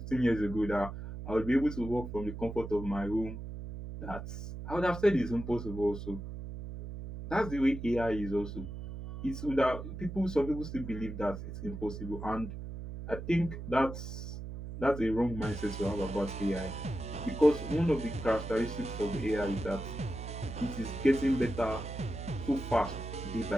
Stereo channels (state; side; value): noise; right; hum, 8 dB below the sound